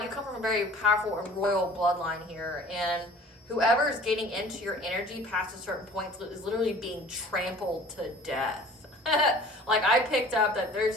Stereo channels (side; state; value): both; normal; correlation 0.47